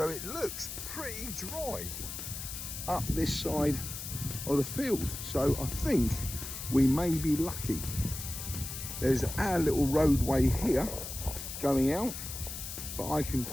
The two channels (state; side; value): noise; left; hiss, 8 dB below the sound